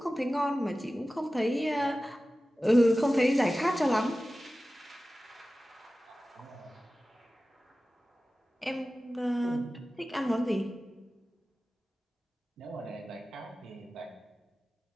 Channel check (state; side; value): normal; both; correlation 0.96